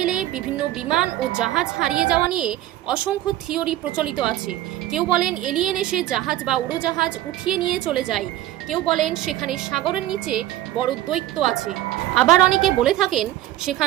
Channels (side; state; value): left; quieter; 14.5 dB